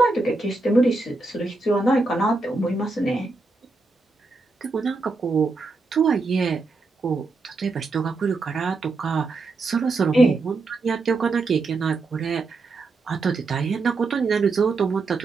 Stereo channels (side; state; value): left; quieter; 3.6 dB